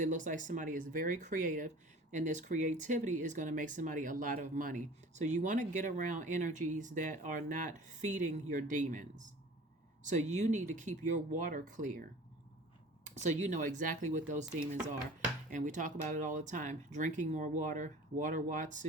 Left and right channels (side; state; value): both; normal; correlation 0.43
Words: looks like somebody is very creative, and this creativity is going to make somebody a lot of money. So you want to get around energies that are not feeding your demons. So you need to keep your water clear, so you know exactly what those demons are. And we talk about it all the time. Drinking more water, water